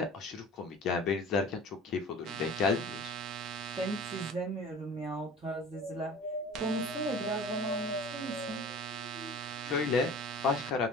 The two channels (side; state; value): both; normal; correlation 0.41